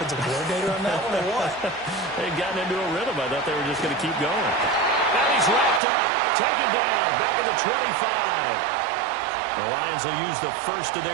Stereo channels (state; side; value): drops out; left; at 5.8 s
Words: coordinator on that one or what? They'd gotten into a rhythm. I thought they were just going to keep going. And he's wrapped up, taken down, back at the 25. The Lions will use the first of